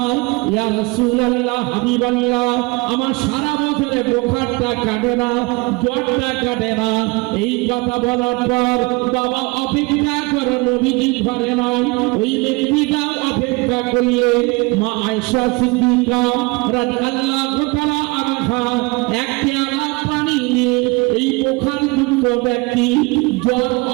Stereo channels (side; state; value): left; quieter; 25.9 dB